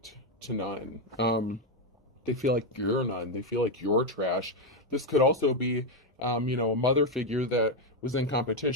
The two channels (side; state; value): both; normal; correlation 0.05